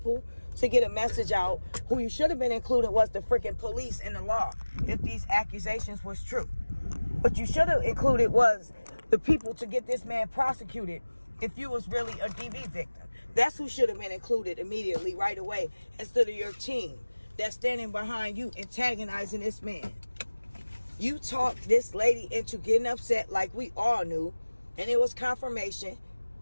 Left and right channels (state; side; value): inverted; both; correlation -1.00